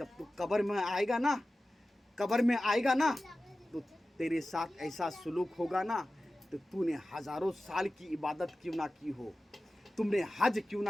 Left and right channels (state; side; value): normal; both; correlation 0.95